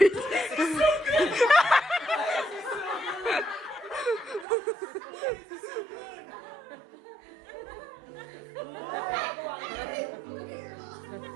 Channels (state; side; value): drops out; left; at 4.5 s